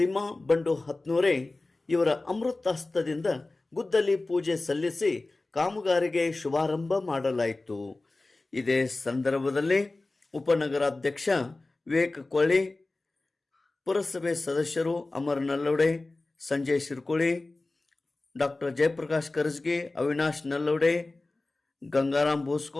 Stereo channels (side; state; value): right; quieter; 3.1 dB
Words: ಬಂಡು ಹತ್ನೂರೆ ಇವರ ಅಮೃತಾಸ್ತದಿಂದ ಗುದ್ದಲಿ ಪೂಜೆ ಸಲ್ಲಿಸಿ ಕಾಮಗಾರಿಗೆ ಶುಭಾರಂಭ ಮಾಡಲಾಯಿತು. ಇದೇ ಸಂದರ್ಭದಲ್ಲಿ ಉಪನಗರಾಧ್ಯಕ್ಷ ವಿವೇಕ್ ಕೊಳ್ಳಿ, ಪುರಸಭೆ ಸದಸ್ಯರು ಅಮರ್ ನಲ್ಲೋಡೆ, ಸಂಜಯ್ ಶಿರ್ಕೋಳಿ, ಡಾಕ್ಟರ್ ಜಯಪ್ರಕಾಶ್ ಕರಜಗಿ, ಅವಿನಾಶ್ ನಲ್ಲೋಡೆ, ಗಂಗಾರಾಮ್